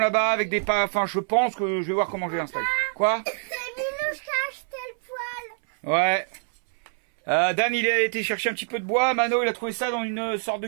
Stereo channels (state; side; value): silent; left; 61 dB below the other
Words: là-bas, avec des pas... Enfin, je pense que je vais voir comment je vais l'installer. Quoi? C'est Minouche qui a acheté le poêle. Ouais. Dan, il a été chercher un petit peu de bois. Mano, il a trouvé ça dans une sorte de